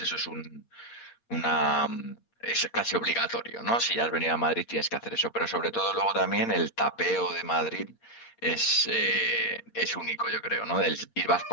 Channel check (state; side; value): late; right; 8.6 ms